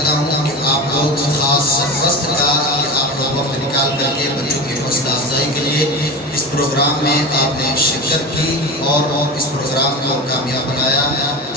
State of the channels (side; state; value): both; normal; correlation 0.26